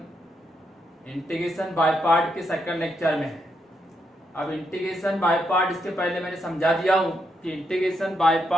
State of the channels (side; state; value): both; normal; correlation 0.80